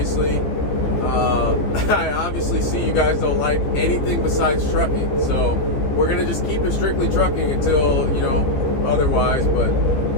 I obviously see you guys don't like anything besides trucking, so we're gonna just keep it strictly trucking until, you know, otherwise. But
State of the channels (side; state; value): right; late; 14 ms